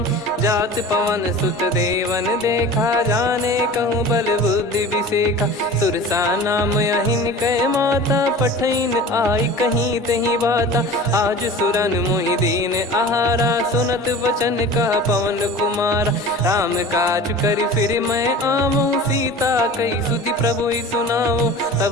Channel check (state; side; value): normal; both; correlation 0.38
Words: जात पवन सुत देवन देखा जाने कहूँ बल बुद्धि विसेखा। सुरसा नाम अहिन कै माता पठैन आई कहीं तही बाता। आज सुरन मोहि दीन आहारा सुनत वचन कह पवन कुमारा। राम काज करि फिर मैं आवऊँ सीता कई सुधि प्रभु ही सुनाऊँ।